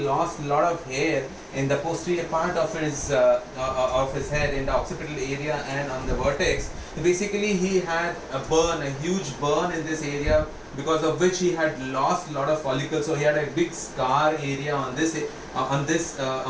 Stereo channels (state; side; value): identical; both; correlation 1.00